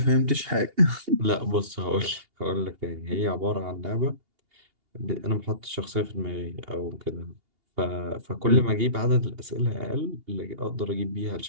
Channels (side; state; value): left; late; 2.8 ms